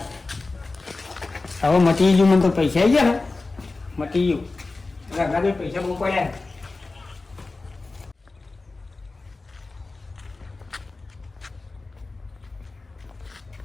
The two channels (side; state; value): right; quieter; 3.5 dB